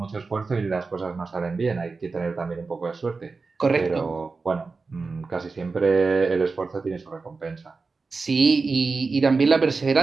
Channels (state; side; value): quieter; left; 4.2 dB